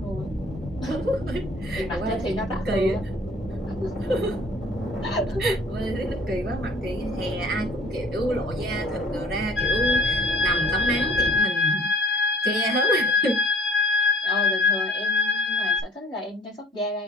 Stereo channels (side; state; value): both; normal; correlation 0.52